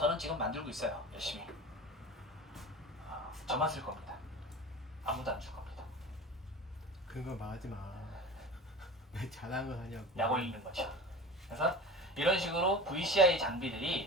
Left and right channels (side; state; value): both; normal; correlation 0.35